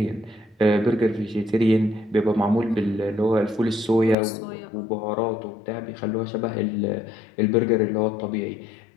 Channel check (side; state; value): right; drops out; at 4.2 s